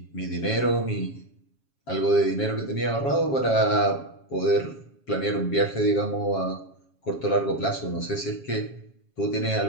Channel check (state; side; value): late; right; 7.3 ms